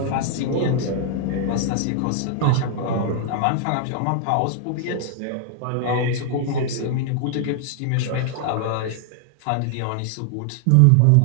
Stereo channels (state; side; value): different; both; correlation 0.00